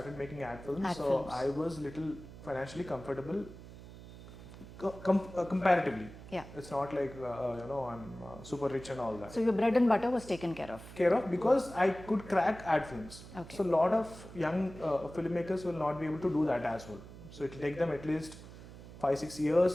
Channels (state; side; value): noise; right; hum, 16 dB below the sound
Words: making ad films, Ad so films. I was little financially comfortable comparatively. Yeah. It's not like you know, I'm super rich and all that. So your bread and butter was taken care of. Because I could crack ad films. Okay. So a lot of young filmmakers will not be able to do that as well. So it will take them at least 5-6